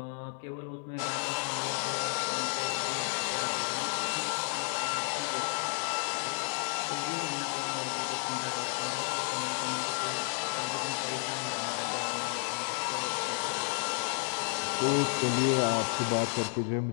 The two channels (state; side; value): silent; right; 56 dB below the other